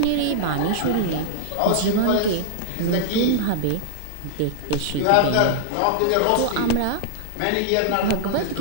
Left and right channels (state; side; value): different; both; correlation 0.00